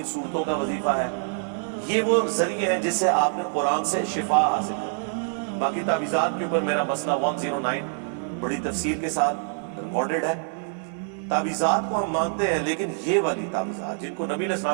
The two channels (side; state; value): left; silent; 61 dB below the other